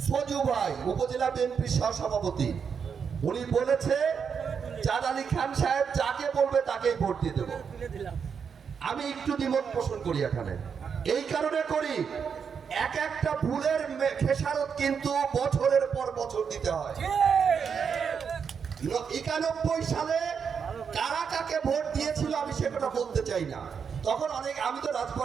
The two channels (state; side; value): quieter; left; 6.6 dB